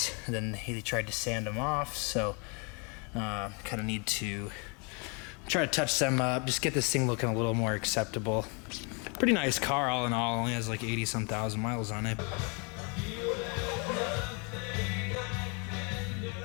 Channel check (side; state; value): right; quieter; 33.8 dB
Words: and then he tried to sand them off, so kind of need to try to touch them up, just get this thing looking a little more acceptable. Pretty nice car all in all, only has like 80-some thousand miles on it.